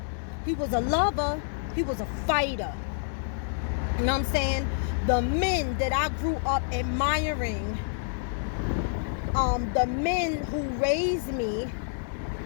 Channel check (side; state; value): right; silent; 59 dB below the other